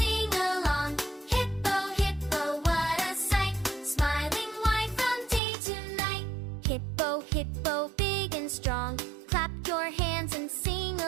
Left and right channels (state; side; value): drops out; left; at 5.4 s